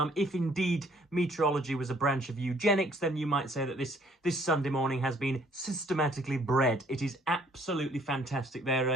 If indeed meteorology was a branch of eugenics, then you might say that this Sunday morning has been systematically bred. It is absolutely fantastic. There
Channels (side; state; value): both; normal; correlation 0.61